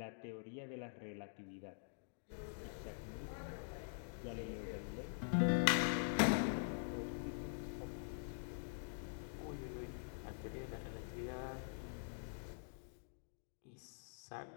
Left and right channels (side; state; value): right; silent; digital silence